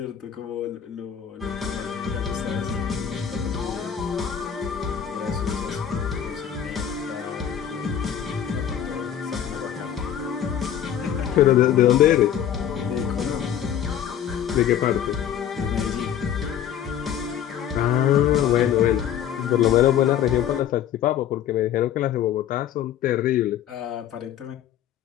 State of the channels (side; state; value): right; quieter; 9.8 dB